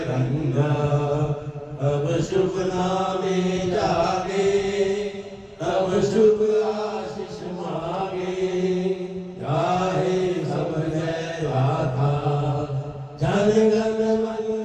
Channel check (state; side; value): identical; both; correlation 1.00